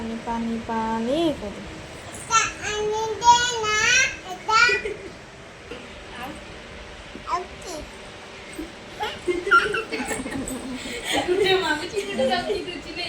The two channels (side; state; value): both; identical; correlation 1.00